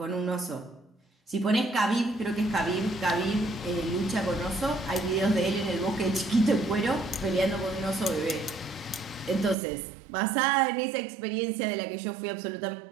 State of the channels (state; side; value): drops out; left; at 9.6 s